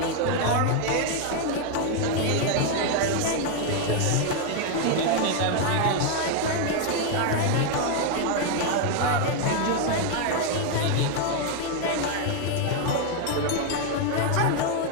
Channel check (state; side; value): different; both; correlation 0.01